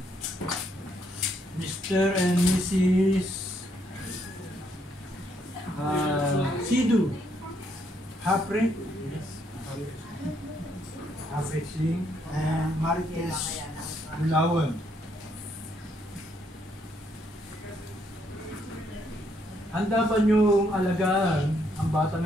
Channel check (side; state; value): both; normal; correlation 0.73